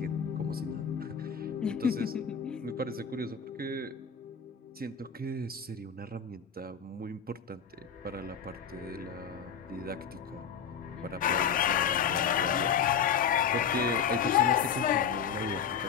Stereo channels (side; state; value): right; quieter; 7.0 dB